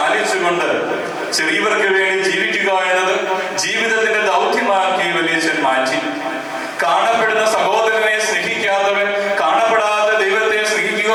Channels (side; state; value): both; identical; correlation 1.00